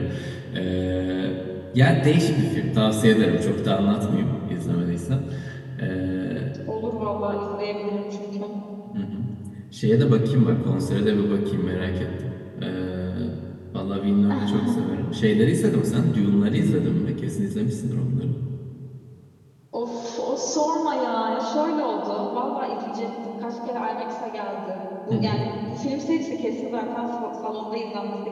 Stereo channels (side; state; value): both; identical; correlation 1.00